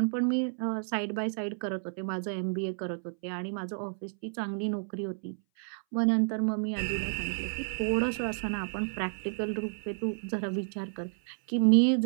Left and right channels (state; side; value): silent; left; 57 dB below the other